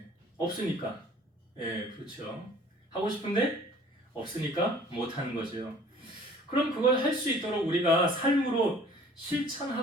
없으니까. 네, 그렇죠. 하고 싶은데 없으니까 못하는 거죠. 그럼 그걸 할 수 있도록 우리가 삶으로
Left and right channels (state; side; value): normal; both; correlation 0.51